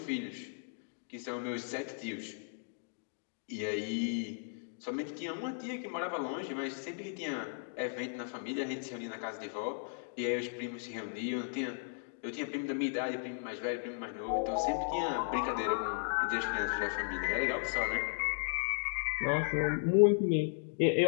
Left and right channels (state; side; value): silent; right; digital silence